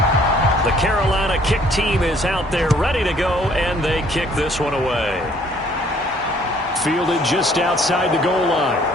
The Carolina kick team is out there ready to go, and they kick this one away. Fielded just outside the goal line.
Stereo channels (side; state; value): both; normal; correlation 0.61